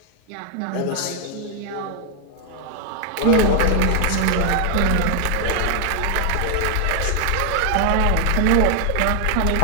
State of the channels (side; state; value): both; different; correlation 0.00